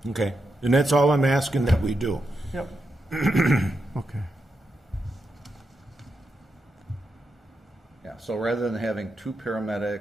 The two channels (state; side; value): normal; both; correlation 0.85